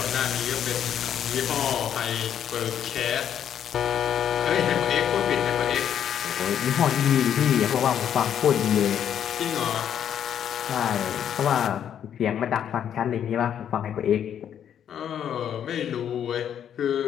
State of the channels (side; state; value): right; quieter; 9.3 dB